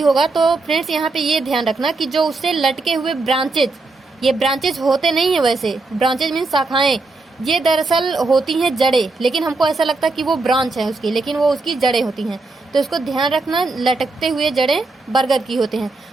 होगा। तो फ्रेंड्स, यहाँ पे ये ध्यान रखना कि जो उससे लटके हुए ब्रांचेज, ये ब्रांचेज होते नहीं है, वैसे ब्रांचेज मीन शाखाएं, ये दरअसल होती हैं जड़ें, लेकिन हमको ऐसा लगता है कि वो ब्रांच है उसकी, लेकिन वो उसकी जड़ें होती हैं। तो इसको ध्यान रखना, लटकते हुए जड़ें बरगद की होते हैं।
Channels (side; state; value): left; quieter; 3.5 dB